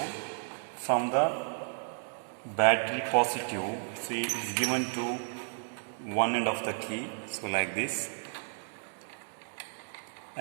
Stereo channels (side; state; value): left; silent; digital silence